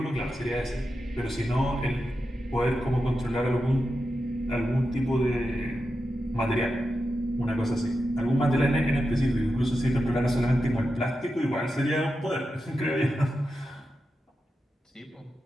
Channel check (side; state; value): both; normal; correlation 0.90